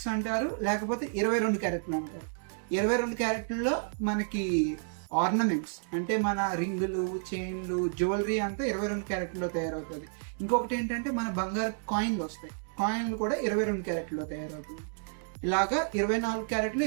అంటారు, లేకపోతే 22 క్యారెట్లు అంటారు. 22 క్యారెట్లలో మనకి ఆర్నమెంట్స్ అంటే మన రింగులు, చైన్లు, జ్యువెలరీ అంతా 22 క్యారెట్లో తయారవుతుంది. ఇంకొకటి ఏంటంటే మన బంగారు కాయిన్లు వస్తాయి, కాయిన్లు కూడా 22 క్యారెట్లో తయారవుతుంది. ఇలాగా 24 క్యారెట్లు,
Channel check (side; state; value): left; silent; digital silence